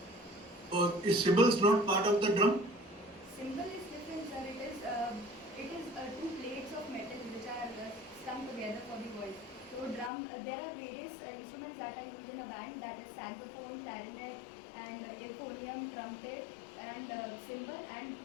Is cymbals not part of the drum? Cymbal is different, sir. It is 2 plates of metal which are strung together for the voice. So drum, there are various instruments that are used in a band, that is saxophone, clarinet, and euphonium, trumpet, and cymbal, and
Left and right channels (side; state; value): right; drops out; at 10.1 s